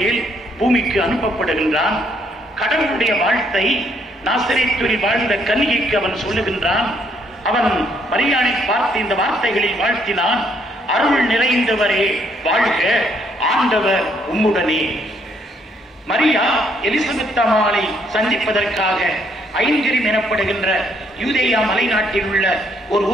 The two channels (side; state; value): both; normal; correlation 0.70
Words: பூமிக்கு அனுப்பப்படுகின்றான். கடவுளுடைய வாழ்த்தை நாசரேத்தில் வாழ்ந்த கன்னிகைக்கு அவன் சொல்லுகின்றான். அவன் மரியாதை பார்த்து இந்த வார்த்தைகளில் வாழ்த்தினான், அருள் நிறைந்தவரே வாழ்க, ஆண்டவர் உம்முடனே. மரியா எலிசபெத் அம்மாளை சந்திப்பதற்காக ஐங்கரிம் எனப்படுகின்ற யூதேயா மலைநாட்டில் உள்ள ஒரு